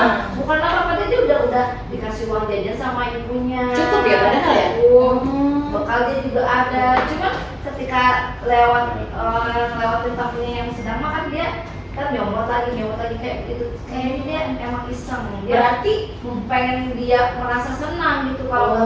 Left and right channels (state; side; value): identical; both; correlation 1.00